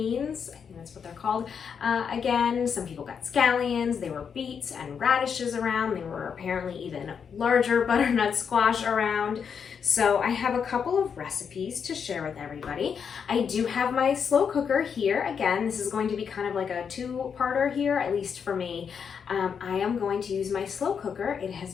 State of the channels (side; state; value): right; quieter; 6.8 dB